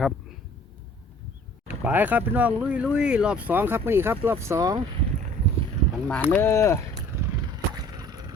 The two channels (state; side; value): normal; both; correlation 0.52